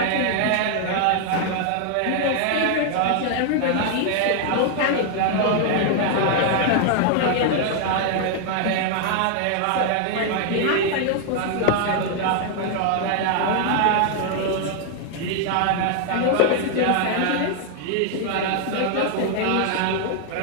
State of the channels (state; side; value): different; both; correlation 0.00